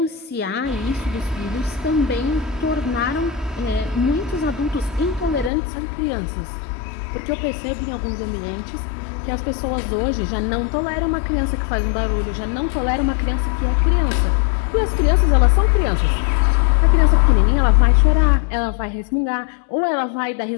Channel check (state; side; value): drops out; right; at 5.5 s